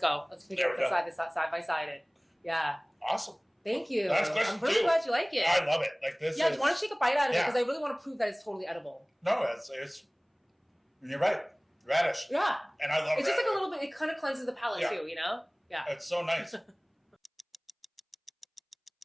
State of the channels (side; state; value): both; identical; correlation 1.00